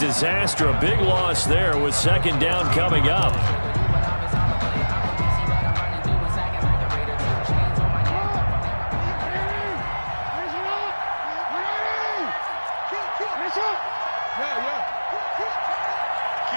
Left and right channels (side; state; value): both; inverted; correlation -1.00